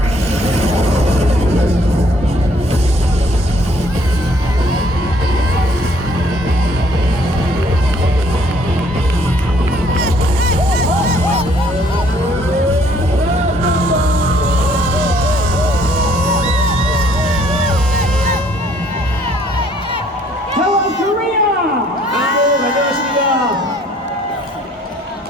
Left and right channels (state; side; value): normal; both; correlation 0.62